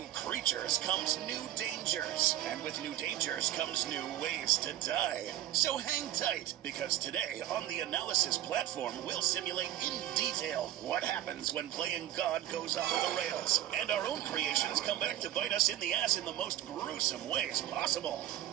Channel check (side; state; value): left; quieter; 13.1 dB